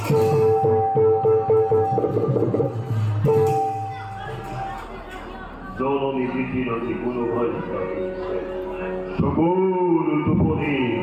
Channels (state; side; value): identical; both; correlation 1.00